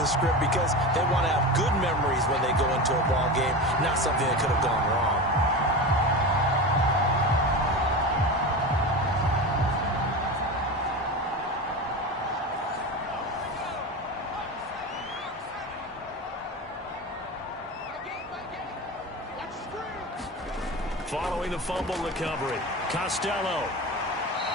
script because they want to have good memories when they go into a ball game, not something that could have gone wrong. Following the fumble recovery, Costello.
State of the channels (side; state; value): both; normal; correlation 0.26